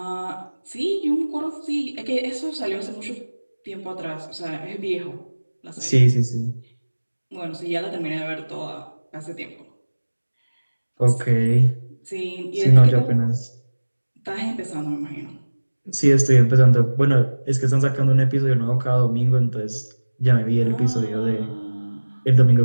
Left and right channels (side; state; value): both; inverted; correlation -1.00